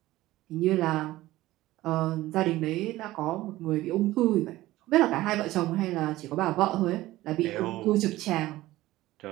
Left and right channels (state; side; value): quieter; left; 16.7 dB